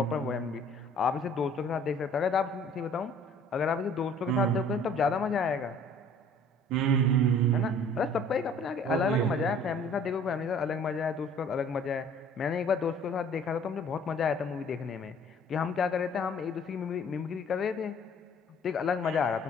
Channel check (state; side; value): normal; both; correlation 0.53